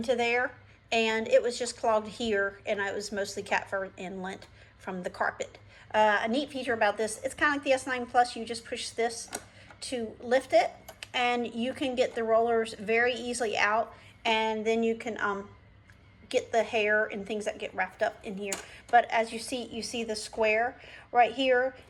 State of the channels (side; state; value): both; identical; correlation 1.00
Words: there, and it was just clogged here, and it was mostly cat fur and lint from the carpet. A neat feature about this, it's kind of like the S9 Plus. You just push this to lift it, and you can get the rollers very easily out. And then you can get the hair and things that get wrapped up in here. But as you see the square right here,